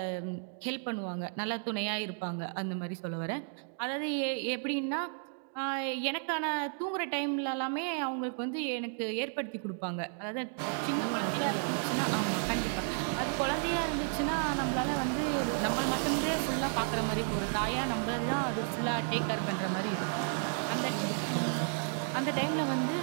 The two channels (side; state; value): left; silent; 56 dB below the other